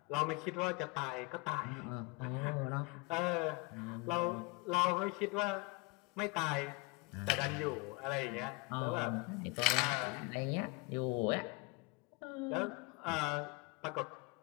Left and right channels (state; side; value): quieter; right; 26.1 dB